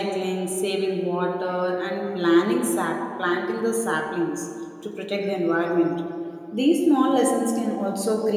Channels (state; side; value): identical; both; correlation 1.00